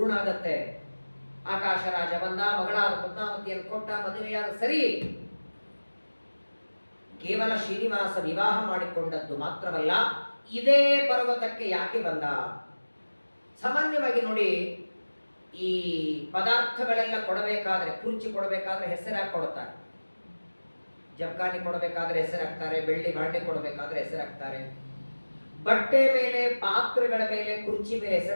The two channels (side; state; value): both; inverted; correlation -1.00